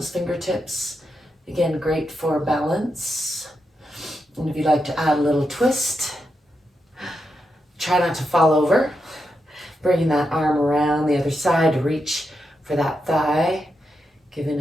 fingertips. Again, great for balance. And if you'd like to add a little twist, try not to fall over. Bringing that arm around the other side to reach for that thigh.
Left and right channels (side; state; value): both; normal; correlation 0.85